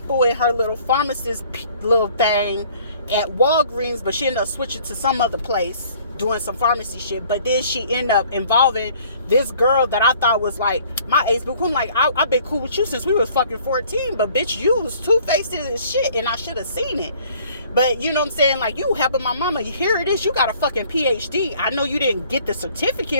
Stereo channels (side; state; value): both; inverted; correlation -0.56